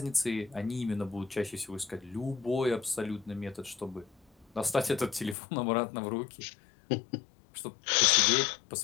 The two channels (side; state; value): right; drops out; at 5.4 s